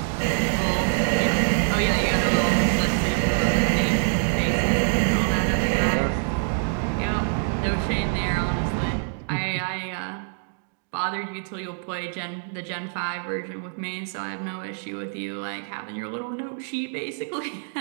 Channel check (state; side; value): silent; left; digital silence